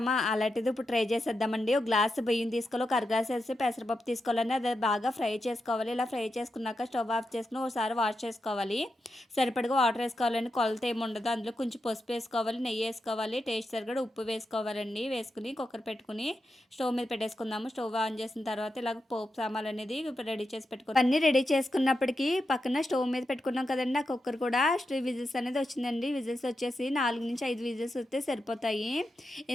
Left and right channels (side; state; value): both; normal; correlation 0.87